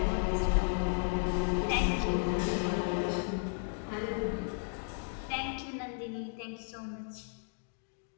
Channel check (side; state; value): right; silent; 55 dB below the other